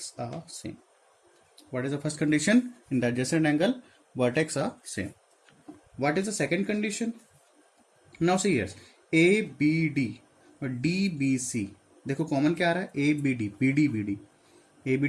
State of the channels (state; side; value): identical; both; correlation 1.00